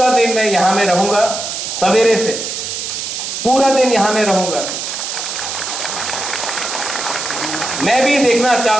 दिन मैं यहां में रहूंगा, सवेरे से पूरा दिन यहां में रहूंगा। मैं भी देखना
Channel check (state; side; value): noise; right; hiss, 5 dB below the sound